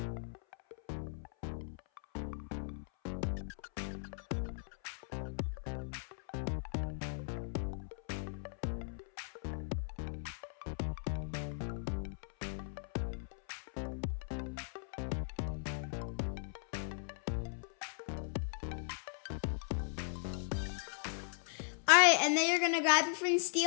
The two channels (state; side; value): silent; right; 52 dB below the other